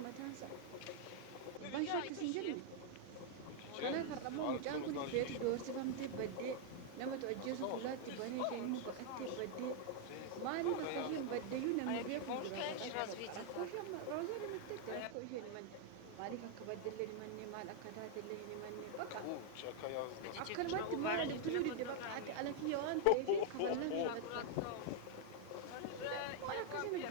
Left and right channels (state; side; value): different; both; correlation 0.00